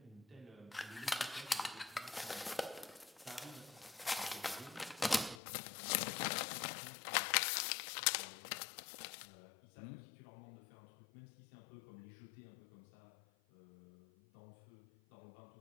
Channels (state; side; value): drops out; right; at 5.4 s